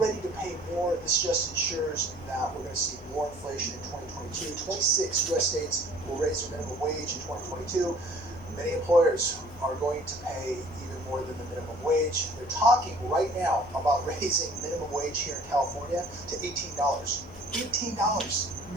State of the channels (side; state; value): left; noise; hum, 19 dB below the sound